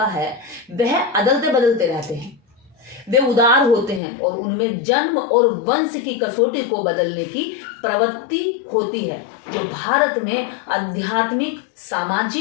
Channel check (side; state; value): right; drops out; at 4.0 s